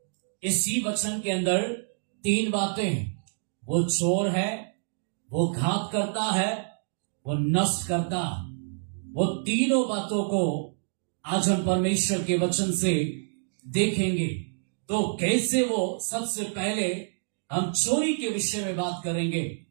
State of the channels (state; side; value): silent; left; digital silence